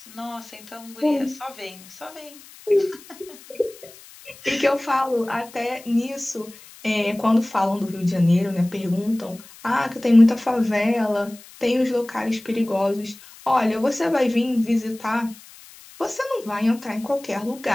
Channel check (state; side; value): noise; left; hiss, 21 dB below the sound